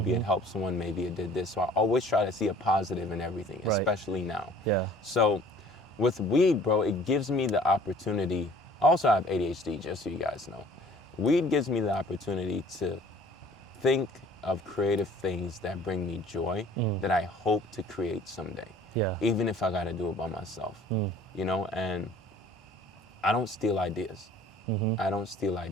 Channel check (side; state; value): both; normal; correlation 0.52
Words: it helped someone, maybe it did this. So I always try to see a positive in everything, especially now. Yeah. So with weed, bro, it gives me the opportunity. Also, I have ADHD, just so you guys know. Weed gives me the opportunity to think of creative things that bring me joy that I hope to create someday. Yeah. Even if I got to do it by myself, you know, and I don't steal ideas. I don't steal